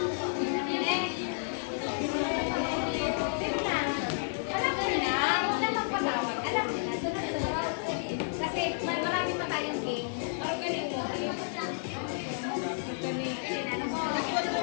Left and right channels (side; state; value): right; silent; 57 dB below the other